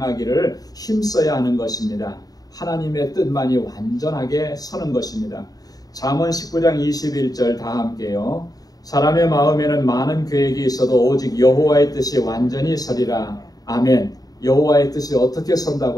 힘써야 하는 것입니다. 하나님의 뜻만이 완전하게 서는 것입니다. 잠언 19장 21절 다 함께요. 사람의 마음에는 많은 계획이 있어도 오직 여호와의 뜻이 완전히 서리라. 아멘. 여호와의 뜻이 어떻게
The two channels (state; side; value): late; right; 0.18 ms